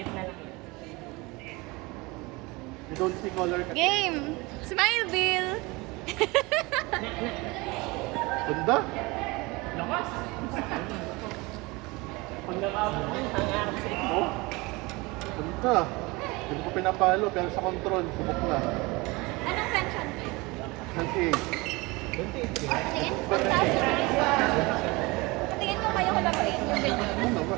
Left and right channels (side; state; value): left; quieter; 24.2 dB